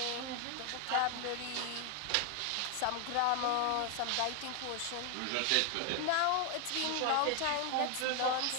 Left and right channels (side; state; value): both; different; correlation 0.01